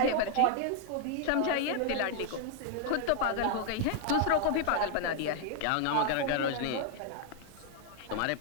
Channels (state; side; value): different; both; correlation 0.00